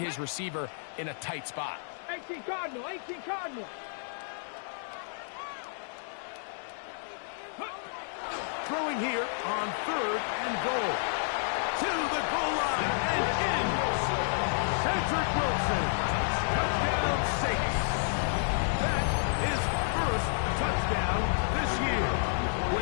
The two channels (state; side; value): silent; right; digital silence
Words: receiver in a tight spot. 18 Cardinal, 18 Cardinal. Throwing here on third and goal. To the goal line and in. Cedric Wilson. Touchdown Saints. That is first touchdown this year.